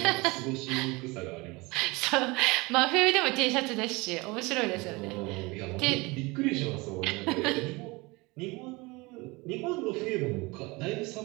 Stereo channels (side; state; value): left; quieter; 24.4 dB